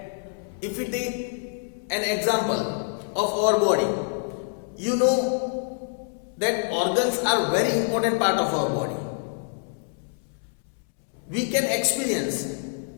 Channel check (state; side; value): silent; right; 61 dB below the other